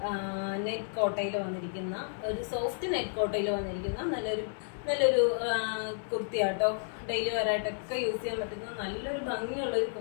നെറ്റ് കോട്ടയിൽ വന്നിരിക്കുന്ന ഒരു സോഫ്റ്റ് നെറ്റ് കോട്ടയിൽ വന്നിരിക്കുന്ന നല്ലൊരു കുർത്തിയാട്ടോ. ഡെയിലി വെയറായിട്ടൊക്കെ യൂസ് ചെയ്യാൻ പറ്റുന്ന നല്ലൊരു ഭംഗിയുള്ള ഒരു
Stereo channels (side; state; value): right; silent; digital silence